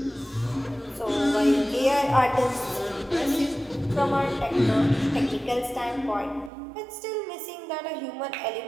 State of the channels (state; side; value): drops out; left; at 6.5 s